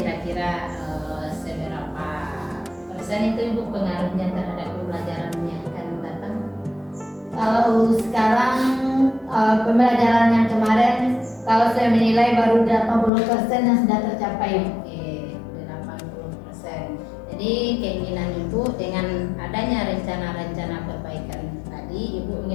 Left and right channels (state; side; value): drops out; right; at 13.1 s